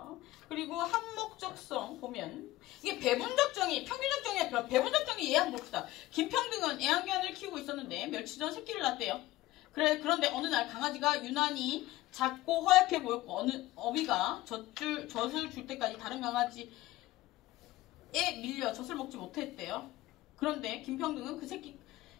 그리고 항목적성 보면 이게 배분적 정의, 평균적 정의와 배분적 정의 이해 한번 봅시다. 김평등은 애완견을 키우고 있었는데 며칠 전 새끼를 낳았대요. 그런데 어느 날 강아지가 유난히 작고 허약해 보였고 어느 어미가 젖을 줄 때까지 다른 강아지에 밀려 젖을 먹지 못했대요. 그런데 김평등은 그 새끼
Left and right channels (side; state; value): right; quieter; 16.9 dB